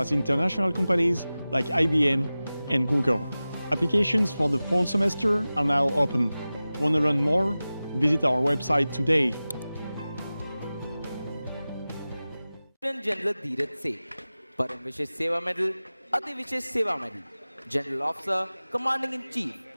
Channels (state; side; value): inverted; both; correlation -0.97